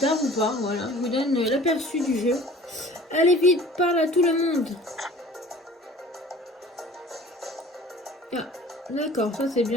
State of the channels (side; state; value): both; normal; correlation 0.46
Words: ou pas. Voilà, je vous donne l'aperçu du jeu. Allez vite, parle à tout le monde. Ah, d'accord, ça c'est